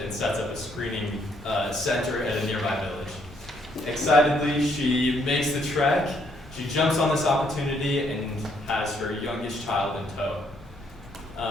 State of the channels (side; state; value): both; normal; correlation 0.70